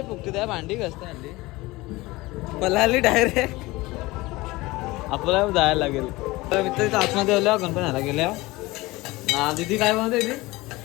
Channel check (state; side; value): quieter; right; 20.8 dB